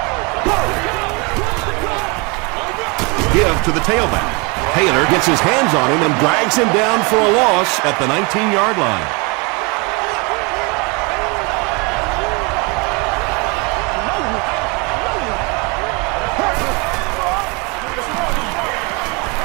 Give to the tailback. Taylor gets his hands on him and drags him down for a loss at the 19-yard line.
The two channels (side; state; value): left; quieter; 29.2 dB